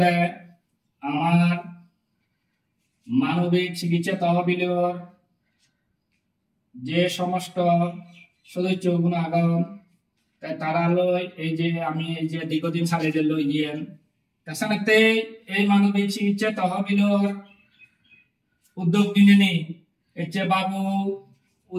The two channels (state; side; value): identical; both; correlation 1.00